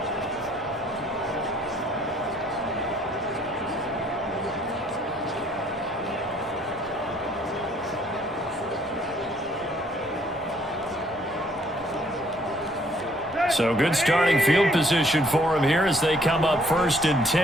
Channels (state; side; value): normal; both; correlation 0.63